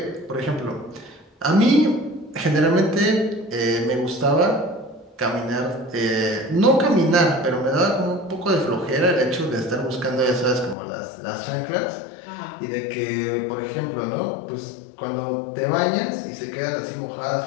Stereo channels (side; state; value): right; drops out; at 10.8 s